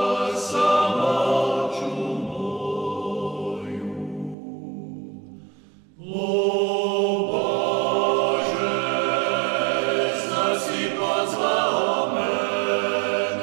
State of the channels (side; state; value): left; drops out; at 4.4 s